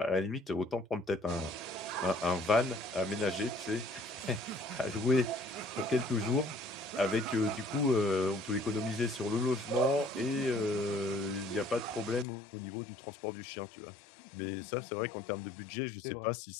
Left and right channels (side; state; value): right; drops out; at 12.2 s